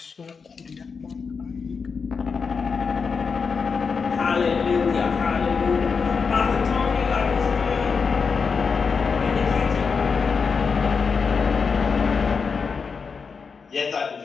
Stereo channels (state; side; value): quieter; right; 5.4 dB